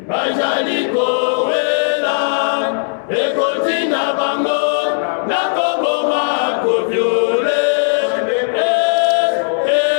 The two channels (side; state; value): right; silent; 65 dB below the other